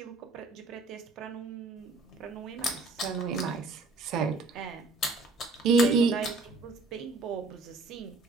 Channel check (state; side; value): quieter; left; 3.4 dB